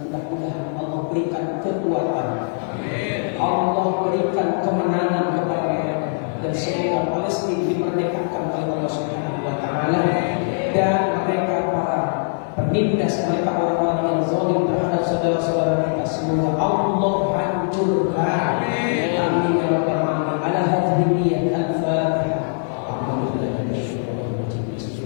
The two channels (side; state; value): right; silent; 64 dB below the other